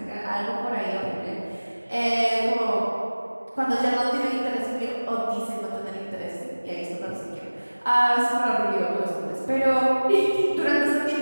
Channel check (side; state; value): both; inverted; correlation -1.00